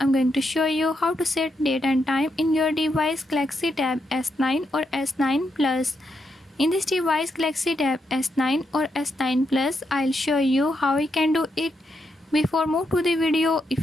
going to show you how to set date and time in your device Galaxy Tab S9 or S9 Plus. In this device Galaxy Tab S9 or S9 Plus, I'll show you how you can do it. Before move to the video,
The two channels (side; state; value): both; normal; correlation 0.81